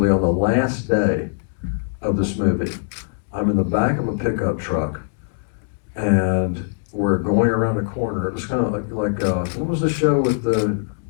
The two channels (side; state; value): right; silent; digital silence